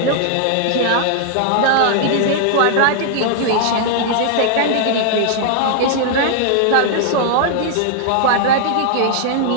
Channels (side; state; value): both; different; correlation 0.00